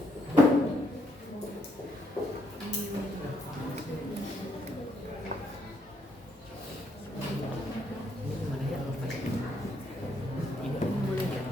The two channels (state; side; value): normal; both; correlation 0.73